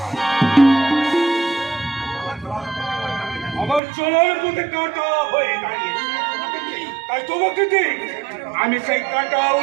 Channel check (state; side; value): drops out; left; at 3.8 s